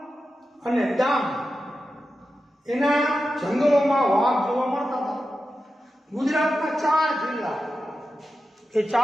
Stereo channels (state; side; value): normal; both; correlation 0.91